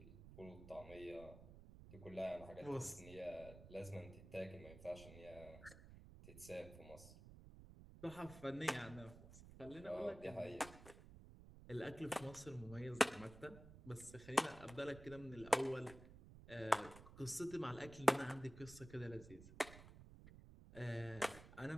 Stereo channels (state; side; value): noise; right; rumble, 16 dB below the sound